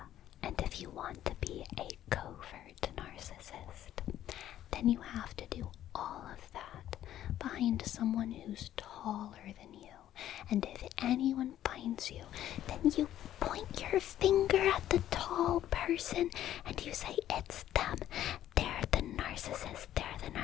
and if you want to be a covert narcissist, then you have to do all of that behind someone who's taller than you. And if anyone finds you, then you point your finger at the tall person and you say, it's them. They're the narcissist. They're the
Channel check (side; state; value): right; quieter; 12.1 dB